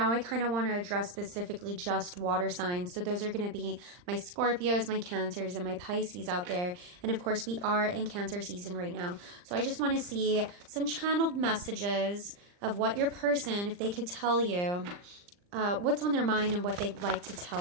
I kind of want to address specifically just water signs. So those are going to be my Scorpios, my Cancers, and my Pisces out there. And of course, we are in Cancer season right now. So I just want to see some channeled messages of what your person, if they could tell you what's on their mind and what they'd like to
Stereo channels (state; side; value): late; left; 39 ms